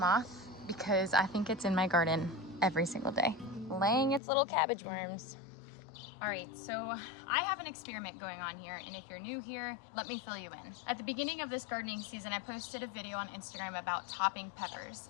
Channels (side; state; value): right; drops out; at 4.2 s